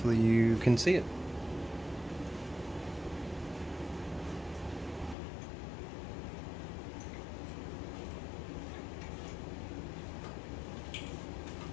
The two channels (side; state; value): right; drops out; at 5.2 s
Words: you can see it.